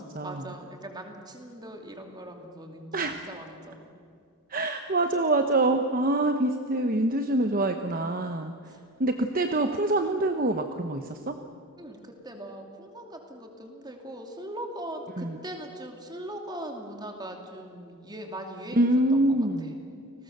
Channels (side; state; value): both; normal; correlation 0.29